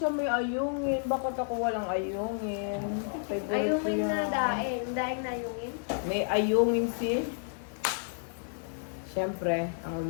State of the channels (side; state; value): right; silent; 57 dB below the other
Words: may ayungin? Bakit ako walang ayungin? Favorite ko Ayungin yan. na daing. Daing na ayungin. May ayungin si... Siyempre, ang